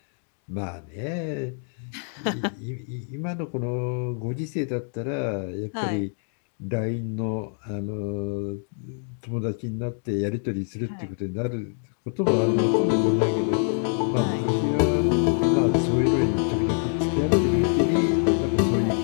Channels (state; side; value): silent; right; 56 dB below the other